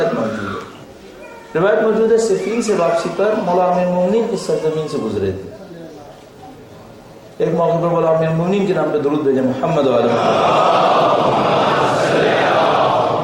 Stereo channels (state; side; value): identical; both; correlation 1.00